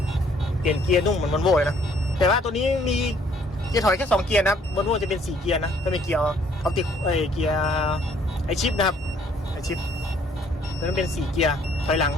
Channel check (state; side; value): normal; both; correlation 0.63